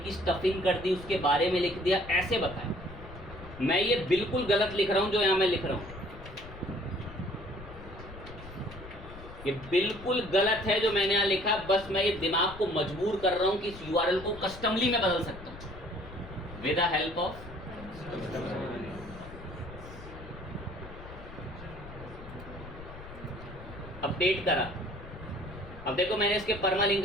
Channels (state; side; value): noise; left; rumble, 15 dB below the sound